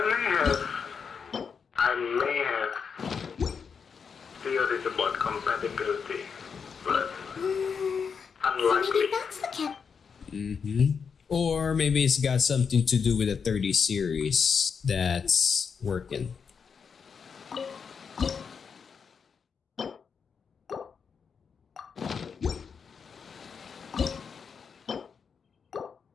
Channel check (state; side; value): quieter; right; 6.2 dB